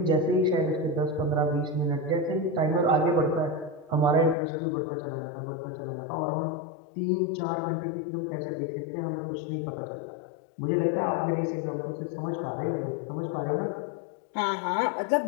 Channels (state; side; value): drops out; right; at 4.4 s